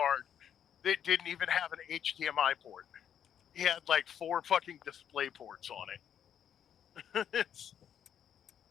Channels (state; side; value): quieter; right; 9.1 dB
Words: that didn't even have an HDMI port. He had like 4 fucking display ports on it.